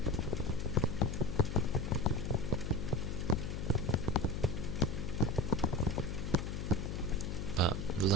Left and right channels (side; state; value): left; noise; hum, 4 dB below the sound